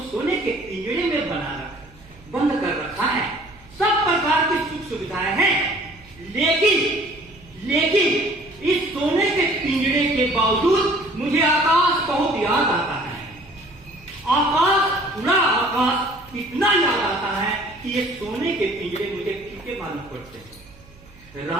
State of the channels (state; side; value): noise; right; hum, 25 dB below the sound